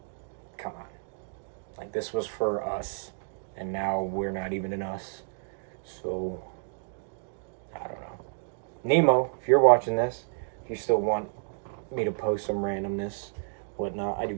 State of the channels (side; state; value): left; silent; digital silence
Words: come on. Like, this was for us, and now we're not even in us. So, I don't know. Nemo, if you're watching this, if you still want me to post some randomness, whatnot, I do